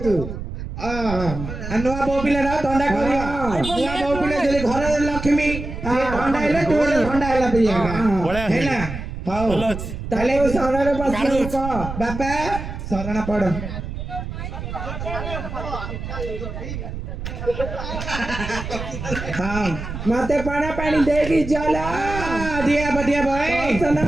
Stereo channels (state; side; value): noise; right; rumble, 7 dB below the sound